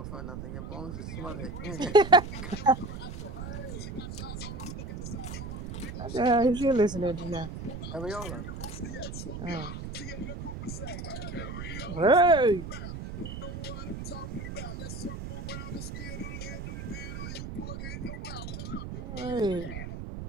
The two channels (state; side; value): noise; right; rumble, 7 dB below the sound